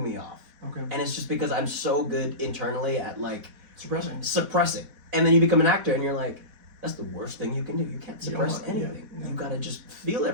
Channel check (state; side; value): late; left; 4.1 ms